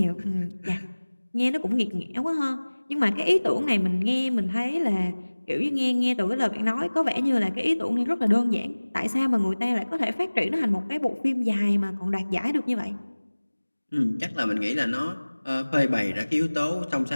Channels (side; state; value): both; inverted; correlation -1.00